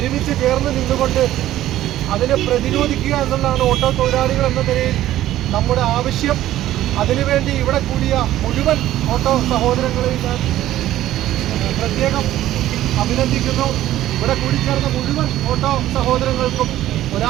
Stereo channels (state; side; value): quieter; left; 13.7 dB